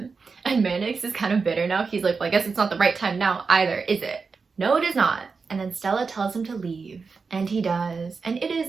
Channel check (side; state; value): left; quieter; 4.8 dB